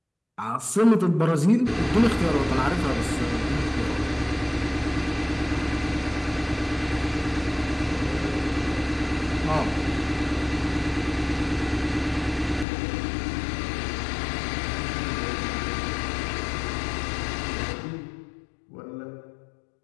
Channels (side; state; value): right; drops out; at 12.7 s